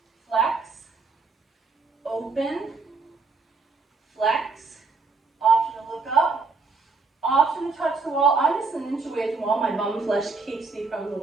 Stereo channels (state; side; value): quieter; left; 4.1 dB